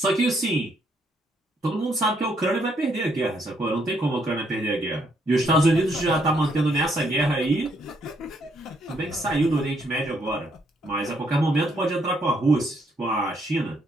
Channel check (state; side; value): normal; both; correlation 0.72